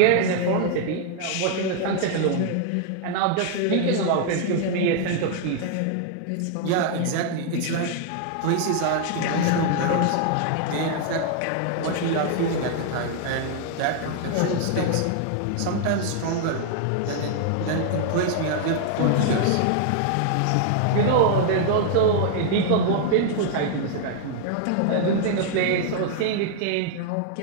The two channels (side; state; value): both; different; correlation 0.00